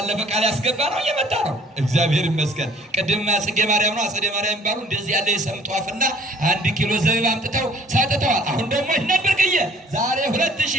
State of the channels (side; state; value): both; normal; correlation 0.55